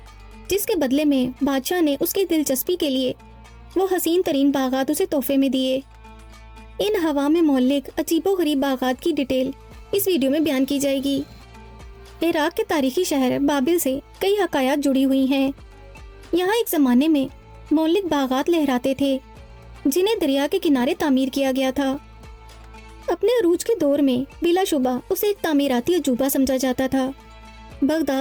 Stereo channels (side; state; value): both; identical; correlation 1.00